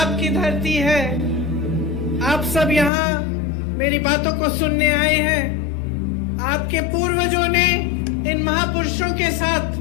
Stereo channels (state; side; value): drops out; right; at 2.9 s